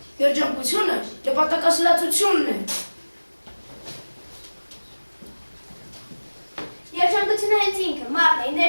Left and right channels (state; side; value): inverted; both; correlation -1.00